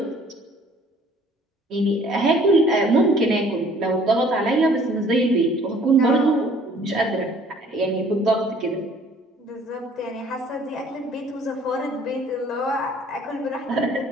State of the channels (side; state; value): both; normal; correlation 0.56